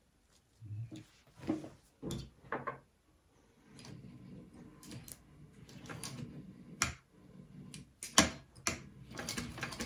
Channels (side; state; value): both; identical; correlation 1.00